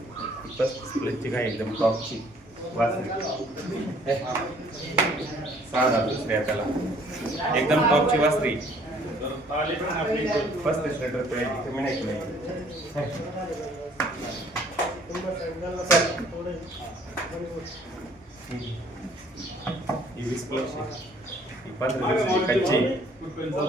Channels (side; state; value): both; normal; correlation 0.59